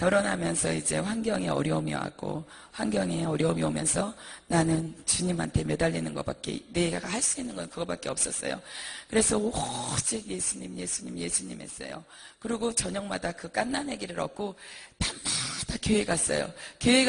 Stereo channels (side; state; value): both; identical; correlation 1.00